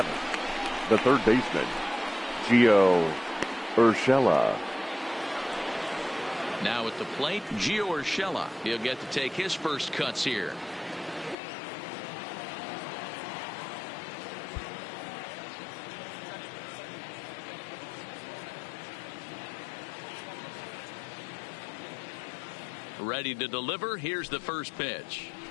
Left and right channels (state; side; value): drops out; right; at 11.4 s